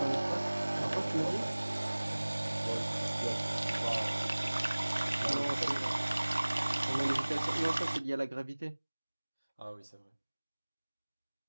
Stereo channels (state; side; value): inverted; both; correlation -1.00